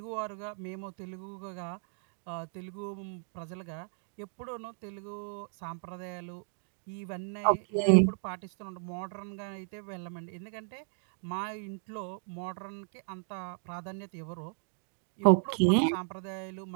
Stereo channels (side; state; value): left; silent; 55 dB below the other